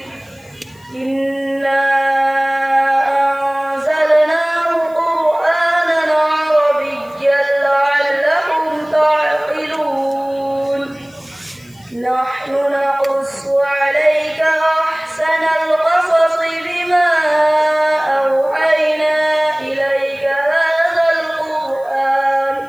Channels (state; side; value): noise; left; hiss, 29 dB below the sound